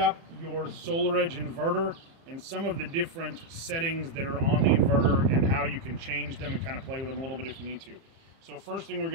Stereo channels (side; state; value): left; late; 30 ms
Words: your SolarEdge inverter and some of the different settings that are on the inverter and how you can change them and kind of play with them a little bit if you need to. So first thing we're